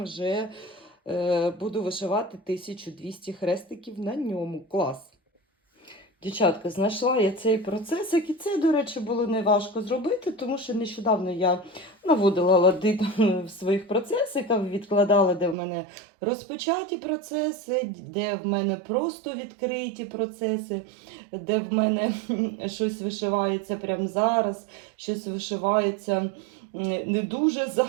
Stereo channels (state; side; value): drops out; left; at 15.6 s